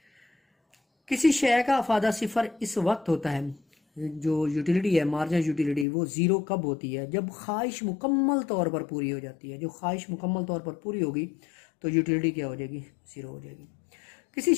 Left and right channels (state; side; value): drops out; right; at 5.9 s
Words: کسی شے کا افادہ صفر اس وقت ہوتا ہے، جو یوٹیلیٹی ہے مارجنل یوٹیلیٹی، وہ زیرو کب ہوتی ہے؟ جب خواہش مکمل طور پر پوری ہو جاتی ہے. جو خواہش مکمل طور پر پوری ہوگی تو یوٹیلیٹی کیا ہو جائے گی؟ زیرو ہو جائے گی. کسی